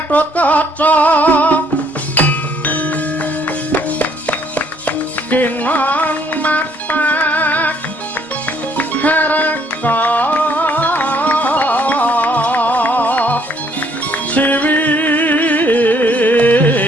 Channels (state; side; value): normal; both; correlation 0.65